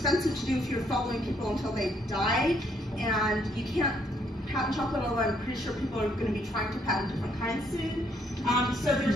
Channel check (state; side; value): normal; both; correlation 0.70